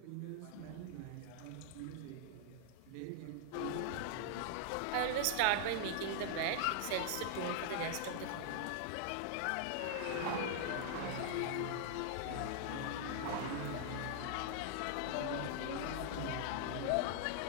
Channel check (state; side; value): different; both; correlation -0.01